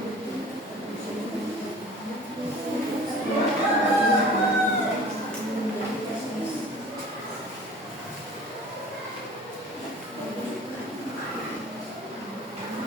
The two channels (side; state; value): both; normal; correlation 0.44